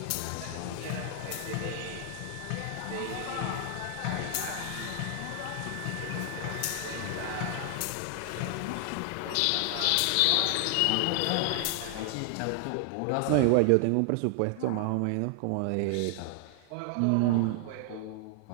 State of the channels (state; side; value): different; both; correlation 0.00